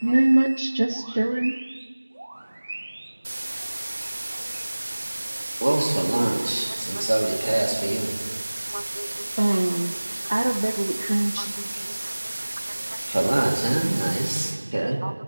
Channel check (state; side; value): inverted; both; correlation -1.00